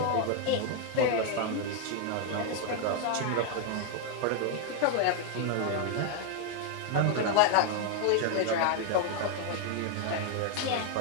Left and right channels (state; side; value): different; both; correlation 0.00